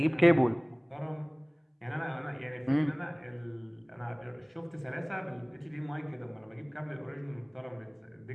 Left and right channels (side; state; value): both; identical; correlation 1.00